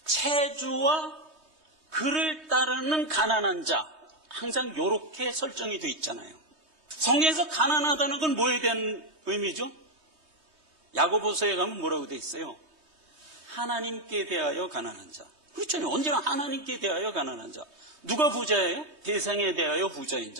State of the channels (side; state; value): left; late; 3.2 ms